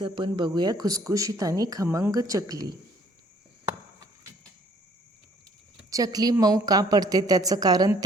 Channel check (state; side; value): normal; both; correlation 0.60